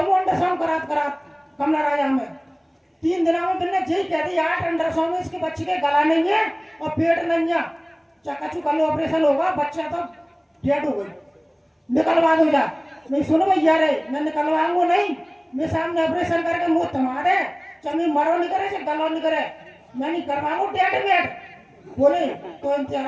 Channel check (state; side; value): identical; both; correlation 1.00